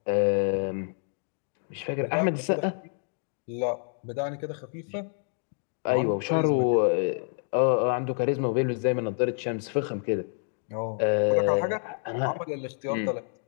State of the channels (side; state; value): right; silent; digital silence